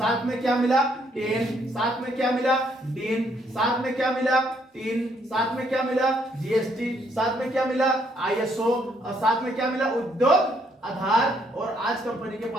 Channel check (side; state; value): both; normal; correlation 0.70